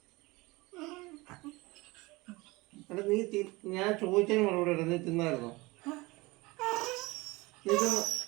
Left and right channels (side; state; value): left; quieter; 22.7 dB